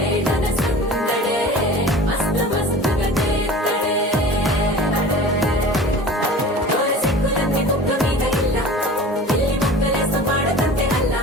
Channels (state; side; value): normal; both; correlation 0.39